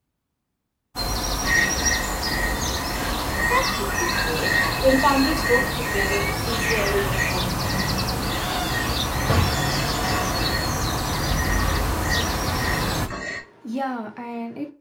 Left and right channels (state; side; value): identical; both; correlation 1.00